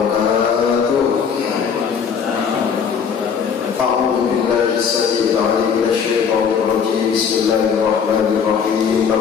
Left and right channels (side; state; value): right; quieter; 6.8 dB